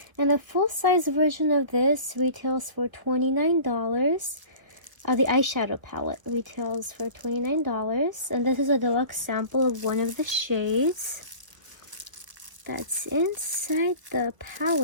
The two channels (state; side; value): late; left; 1.0 ms